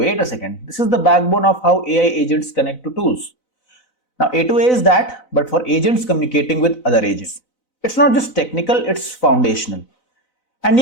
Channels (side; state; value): right; late; 4.0 ms